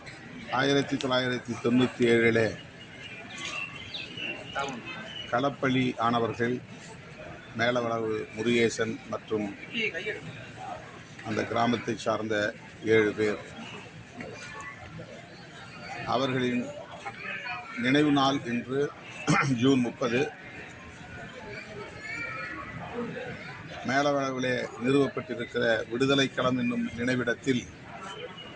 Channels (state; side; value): identical; both; correlation 1.00